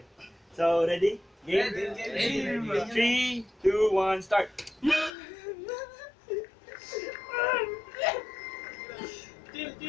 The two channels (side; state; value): right; drops out; at 5.1 s